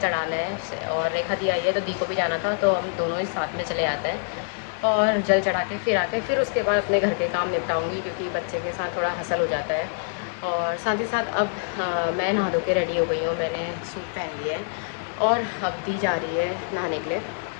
है। और रेखा दी आई है तो दी को भी जाना था, तो हम दोनों ही साथ में चले आते हैं और जल चढ़ा के फिर आके फिर उसके बाद अपने घर के काम निपटाऊँगी, क्योंकि बच्चे के साथ थोड़ा हसल हो जाता है। और साथ ही साथ अब मैं नहा धो के रेडी हो गई हूँ, मैंने सूट पहन लिया है और अब दी जा रही है नहाने के लिए।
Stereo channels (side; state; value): right; silent; digital silence